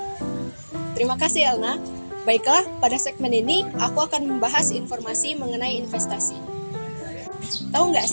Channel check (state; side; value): inverted; both; correlation -1.00